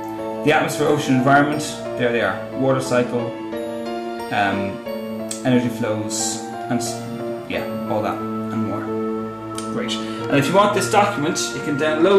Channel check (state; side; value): identical; both; correlation 1.00